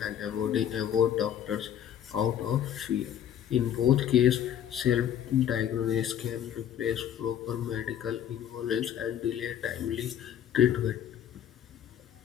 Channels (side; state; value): right; quieter; 10.0 dB